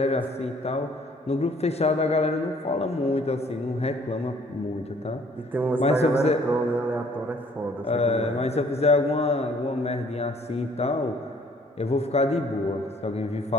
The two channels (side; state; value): both; normal; correlation 0.59